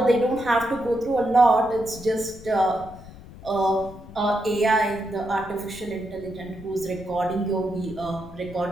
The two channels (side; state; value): left; noise; rumble, 17 dB below the sound